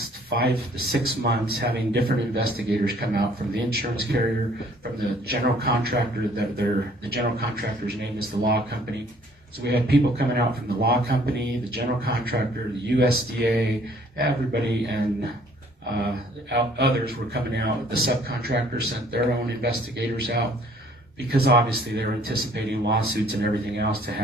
5 to 6 months having different investigators come out from the insurance carrier, from the general contractor. The general contractor's name is the law company. So we had people coming out from the law company, the general contractor, the USDA, everybody, and others were coming out. The subcontractors sent their own investigators out because obviously they were anticipating lawsuits and everything else to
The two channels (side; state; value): both; normal; correlation 0.59